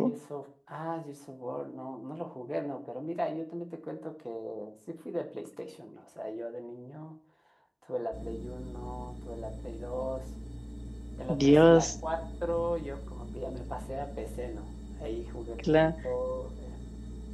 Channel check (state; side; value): identical; both; correlation 1.00